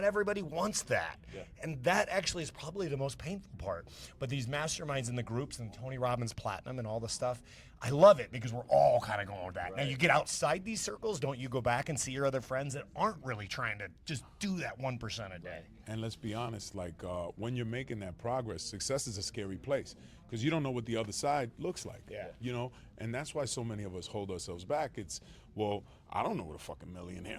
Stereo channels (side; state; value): both; identical; correlation 1.00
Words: everybody wants that. And that actually is probably the most painful part. But these masterminds in the groups and Tony Robbins Platinum and all the stuff, I love it because we're all kind of going with that. Now, you get outside these circles, don't you go back and see your other friends that aren't really trying to just do that 1% a day? And let's be honest, like when you're making that progress, success is a scary place because you don't know what the other side looks like. Yeah. And that's why so many of us hold ourselves back. It's, well, I don't know what a fucking